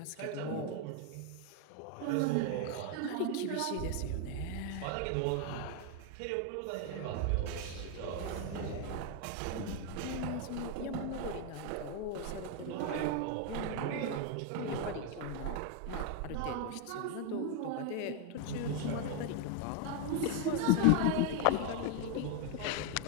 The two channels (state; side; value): different; both; correlation 0.01